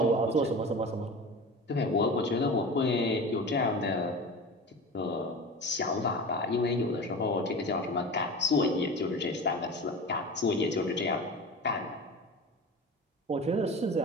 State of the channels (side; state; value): both; normal; correlation 0.32